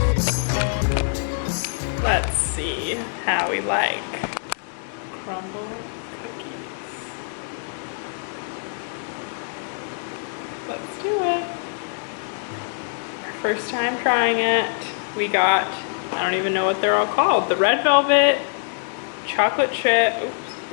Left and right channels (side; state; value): right; silent; 63 dB below the other